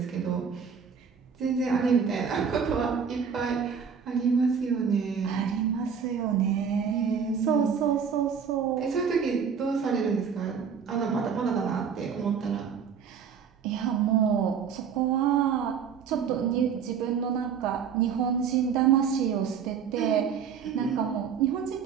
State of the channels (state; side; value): quieter; left; 6.8 dB